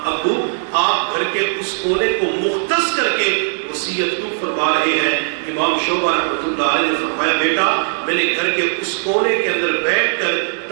ابو آپ گھر کے اس کونے کو مختص کر کے وصیت کیوں فرما رہے ہیں؟ امام شعبہ رحمۃ اللہ علیہ نے فرمایا بیٹا میں نے گھر کے اس کونے کے اندر بیٹھ کر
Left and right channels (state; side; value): silent; left; 61 dB below the other